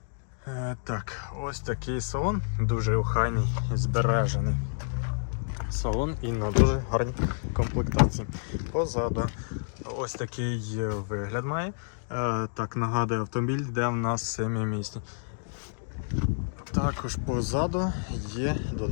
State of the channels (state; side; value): silent; right; digital silence